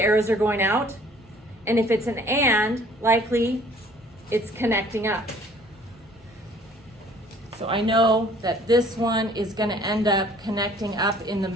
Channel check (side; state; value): both; normal; correlation 0.55